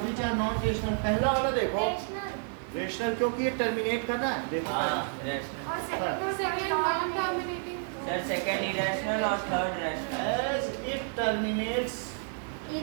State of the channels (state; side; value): silent; left; 57 dB below the other